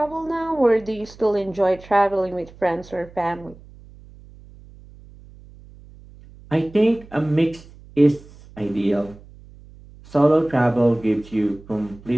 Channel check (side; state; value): right; noise; hum, 22 dB below the sound